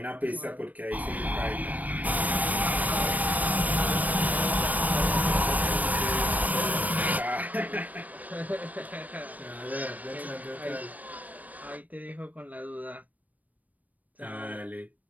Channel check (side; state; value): left; late; 0.076 ms